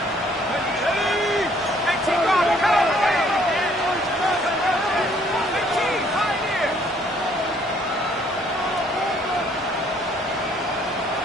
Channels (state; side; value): normal; both; correlation 0.63